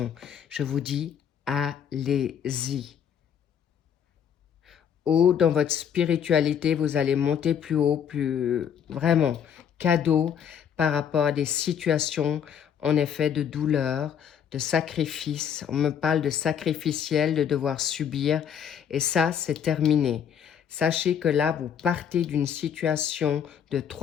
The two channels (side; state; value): right; quieter; 8.4 dB